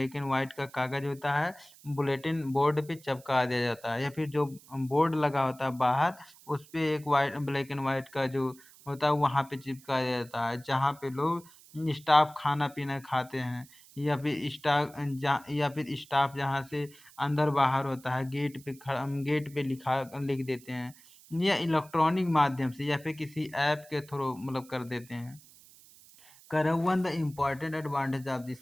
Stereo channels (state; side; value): noise; right; hiss, 23 dB below the sound